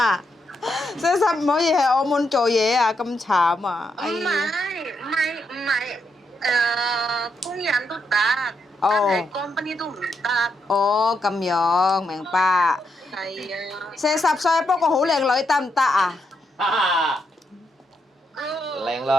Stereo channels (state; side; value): normal; both; correlation 0.81